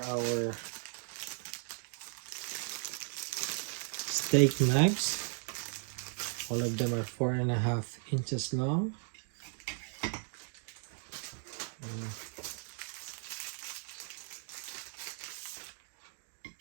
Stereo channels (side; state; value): left; silent; 54 dB below the other